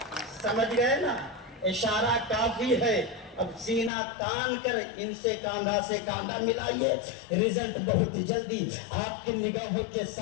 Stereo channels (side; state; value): right; drops out; at 3.9 s